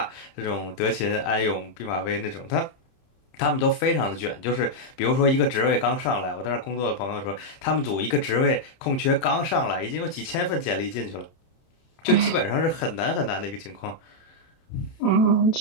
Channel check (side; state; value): right; late; 30 ms